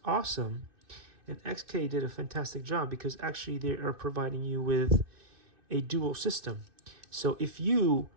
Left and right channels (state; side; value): late; left; 2.6 ms